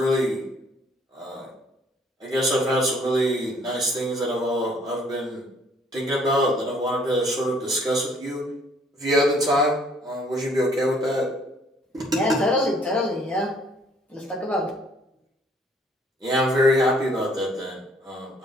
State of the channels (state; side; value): normal; both; correlation 0.61